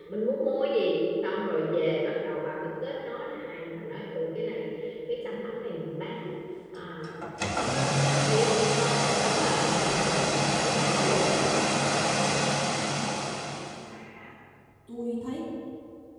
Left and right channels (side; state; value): both; identical; correlation 1.00